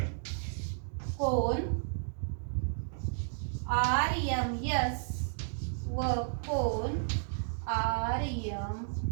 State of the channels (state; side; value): silent; left; digital silence